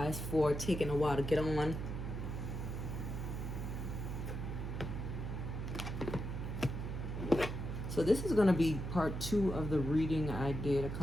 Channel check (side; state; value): right; noise; hum, 4 dB below the sound